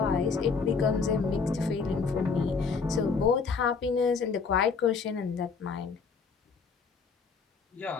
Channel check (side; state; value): right; quieter; 5.1 dB